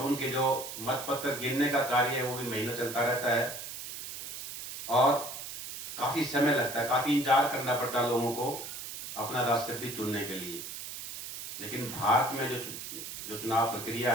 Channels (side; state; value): right; noise; hiss, 9 dB below the sound